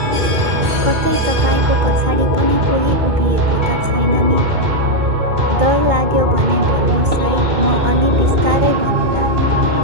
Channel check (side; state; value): left; late; 2.2 ms